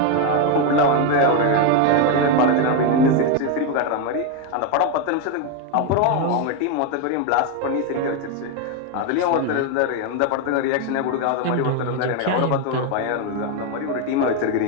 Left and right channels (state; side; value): different; both; correlation 0.02